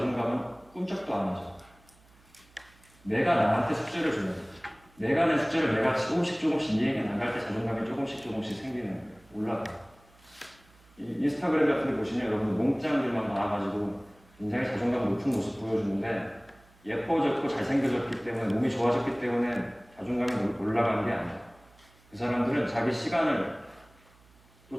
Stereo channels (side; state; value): right; noise; hum, 29 dB below the sound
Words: 꿈쩍도 안 하죠. 내가 나한테 숙제를 주면 내가 낸 숙제를 내가 조금씩 이행해 나갈 때 자존감이 조금씩 생기는 거예요. 올라가요. 인스타그램 같은 데 보시면 여러분 몽짱들만 나와가지고 굉장히 자존감 높은 모습 보여주는데 예뻐졌고 잘생겨졌기 때문에 몸이 좋아졌기 때문에 자존감이 올라가는 게 아니에요. 그 사람들은 자기 시간을 또